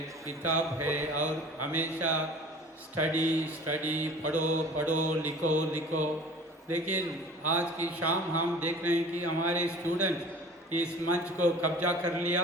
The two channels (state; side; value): normal; both; correlation 0.44